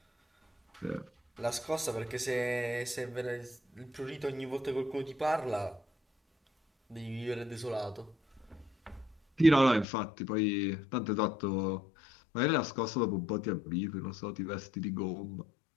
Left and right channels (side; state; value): right; drops out; at 9.9 s